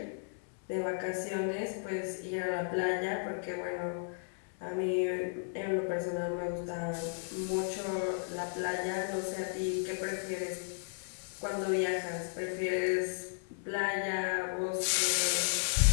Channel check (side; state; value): right; silent; digital silence